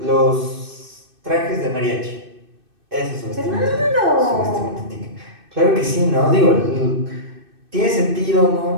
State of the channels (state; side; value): late; left; 2.6 ms